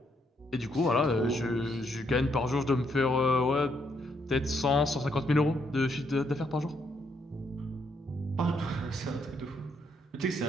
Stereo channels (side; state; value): both; normal; correlation 0.74